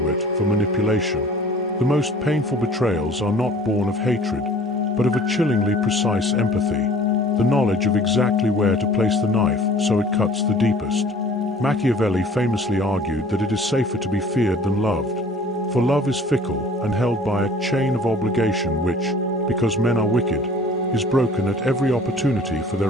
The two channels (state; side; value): normal; both; correlation 0.50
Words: for manipulation. The most painful betrayals are not born of hatred, but of a chillingly precise empathy, the knowledge of exactly where to place the knife so it cuts the deepest. Machiavelli famously argued that it is safer to be feared than loved, for love is fickle and held by a chain of obligation which, because men are wicked, is broken at every opportunity for